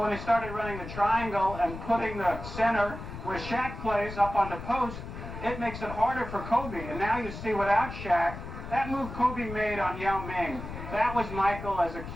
they started running the triangle and putting the center where Shaq plays up on the post, it makes it harder for Kobe. And now you see without Shaq, that move Kobe made on Yao Ming, that was Michael as a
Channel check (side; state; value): left; noise; rumble, 10 dB below the sound